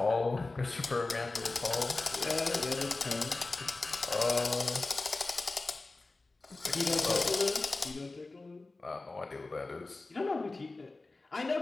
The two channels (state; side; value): quieter; right; 3.3 dB